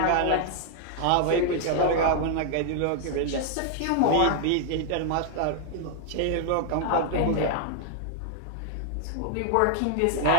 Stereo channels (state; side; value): different; both; correlation 0.00